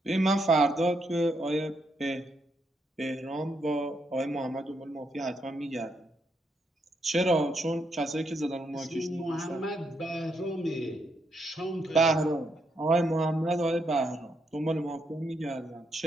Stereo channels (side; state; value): both; normal; correlation 0.78